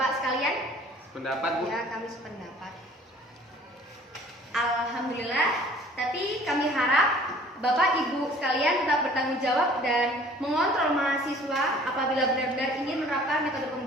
sekalian? Pendapat Bu? Ya, kami sependapat. Alhamdulillah, tapi kami harap Bapak Ibu sekalian tetap bertanggung jawab dan mengontrol mahasiswa apabila benar-benar ingin menerapkan metode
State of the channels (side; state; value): both; normal; correlation 0.52